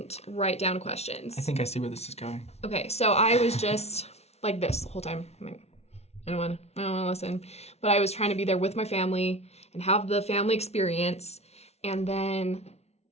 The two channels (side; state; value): right; late; 0.31 ms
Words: write down questions. I think I see where this is going. Okay, so I was just like this the whole time. I'm like, I don't want to listen. But I was trying to be there with my family and have the family experience. And then